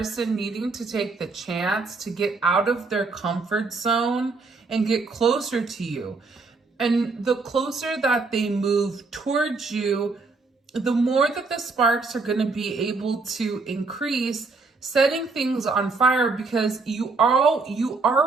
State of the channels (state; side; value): quieter; left; 4.0 dB